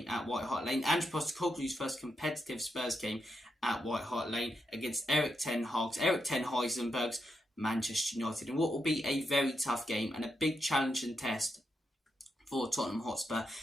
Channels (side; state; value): both; normal; correlation 0.83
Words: at White Hart Lane. Andrew Postecoglou's first competitive Spurs game at White Hart Lane against Erik ten Heisenberg's Manchester United, and what will be a very tough game and a big challenge and test for Tottenham Hotspur.